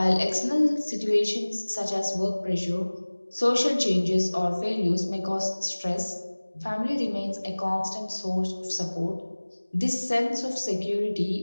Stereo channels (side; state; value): both; inverted; correlation -1.00